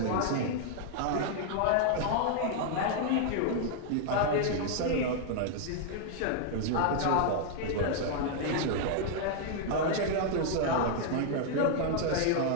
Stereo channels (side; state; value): both; different; correlation 0.00